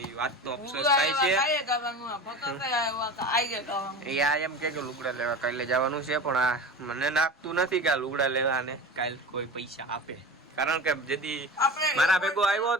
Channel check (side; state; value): both; normal; correlation 0.31